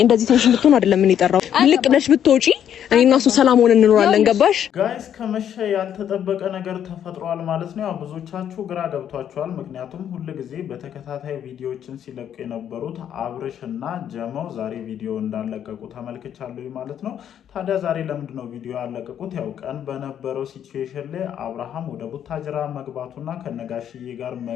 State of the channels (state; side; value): quieter; right; 9.6 dB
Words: እንደዚህ ቴንሽን ብትሆን አይደለም ምን ይጠራው ልቅ ብለሽ ብትወጪ እኔና እሱ ሰላም ሆነን እንኖራለን ገባሽ ጋይስ ከመሸ ያልተጠበቀ ነገር ተፈጥሯል ማለት ነው ያው ብዙዎቻችሁ ግራ ገብቷችኋል ምክንያቱም ሁሉ ጊዜ በተከታታይ ቪዲዮዎችን ሲለቁ የነበሩት አብርሽና ጀመው ዛሬ ቪዲዮ እንዳለቀቁ ተመልክቻለሁ ማለት ነው ታዲያ ዛሬ ለምንድነው ቪዲዮ ያለቀቁት ያው ቀን በነበረው ሲቹዌሽን ላይ አብርሃም ወደ ቡታጅራ መግባቱና ከነጋሽዬ ጋር